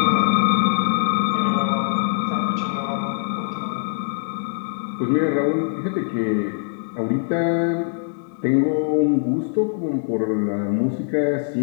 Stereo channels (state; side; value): silent; right; digital silence